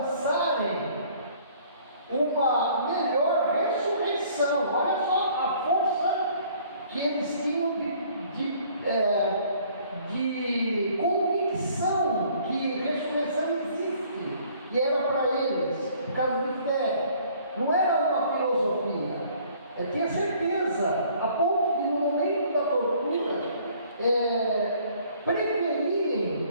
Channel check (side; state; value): both; inverted; correlation -0.57